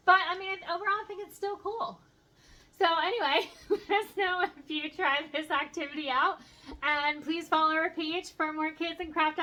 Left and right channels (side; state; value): both; identical; correlation 1.00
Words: but I mean, overall I think it's still cool. So anyway, let us know if you tried this activity out, and please follow our page for more kids and craft